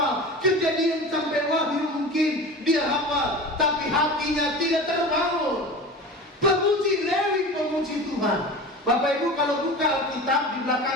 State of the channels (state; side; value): normal; both; correlation 0.33